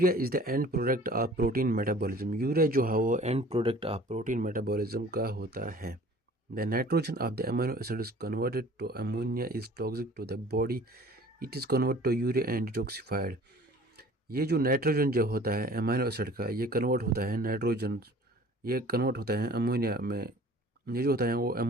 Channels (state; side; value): normal; both; correlation 0.48